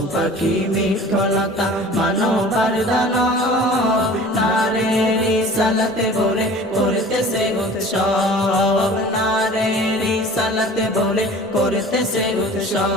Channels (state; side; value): normal; both; correlation 0.43